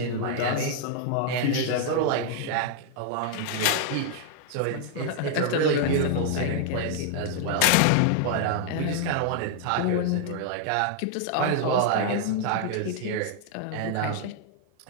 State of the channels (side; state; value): both; different; correlation 0.00